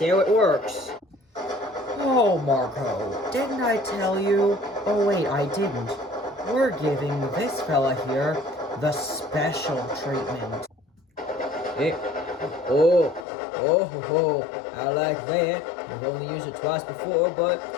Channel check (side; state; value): right; drops out; at 13.2 s